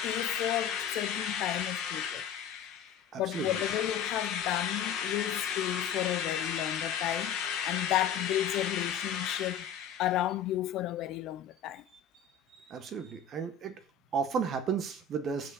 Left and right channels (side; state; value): right; quieter; 6.5 dB